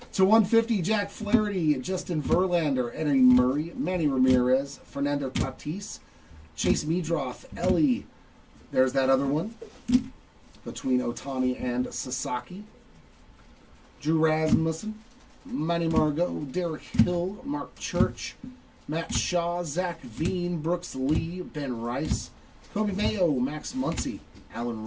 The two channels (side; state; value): both; identical; correlation 1.00